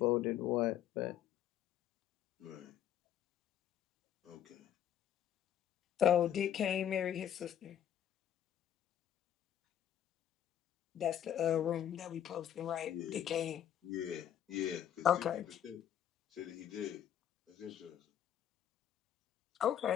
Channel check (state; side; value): quieter; right; 10.2 dB